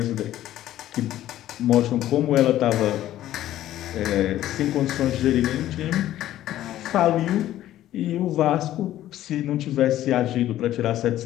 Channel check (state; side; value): quieter; right; 13.3 dB